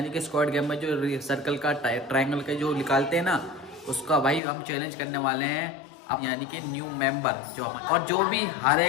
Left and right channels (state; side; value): drops out; right; at 4.4 s